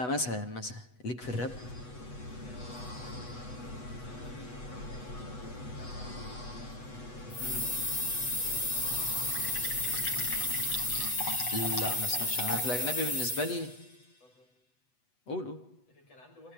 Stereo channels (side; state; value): right; late; 8.1 ms